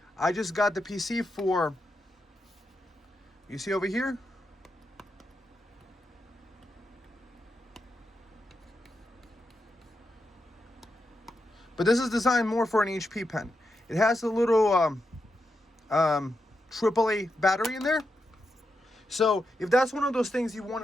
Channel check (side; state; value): both; normal; correlation 0.86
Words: I just got the PC for, you see over here? But this is designed more for an HP pen. It has a little AAA battery in there. So if that's one of those things you